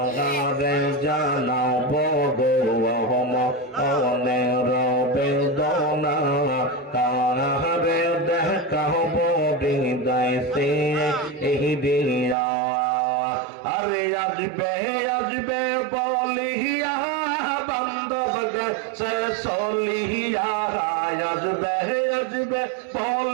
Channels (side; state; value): left; drops out; at 12.4 s